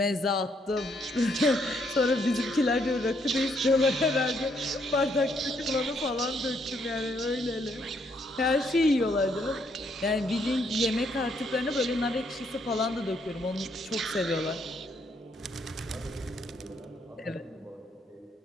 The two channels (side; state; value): both; normal; correlation 0.72